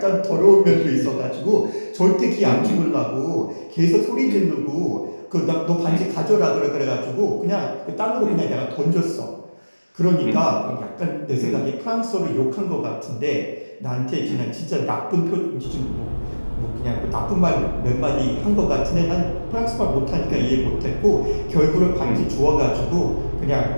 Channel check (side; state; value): both; inverted; correlation -1.00